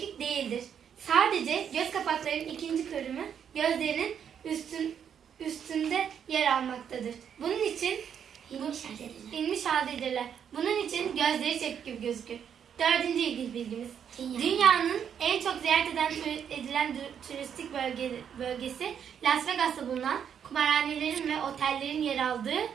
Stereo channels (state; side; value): quieter; left; 8.2 dB